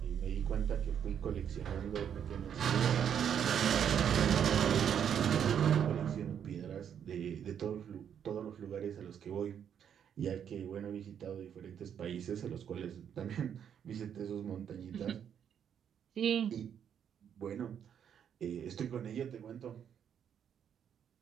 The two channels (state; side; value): quieter; left; 8.6 dB